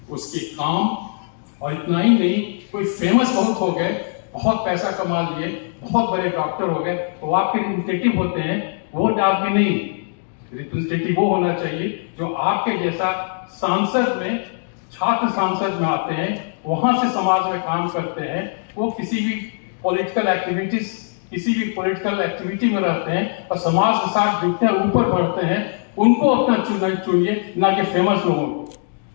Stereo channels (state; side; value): silent; right; digital silence